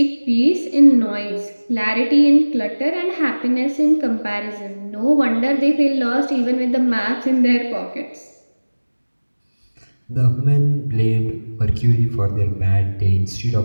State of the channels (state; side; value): inverted; both; correlation -1.00